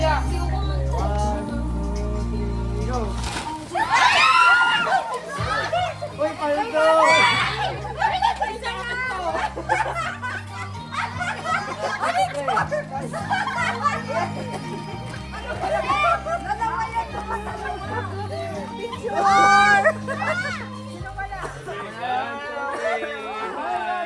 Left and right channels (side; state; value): both; identical; correlation 1.00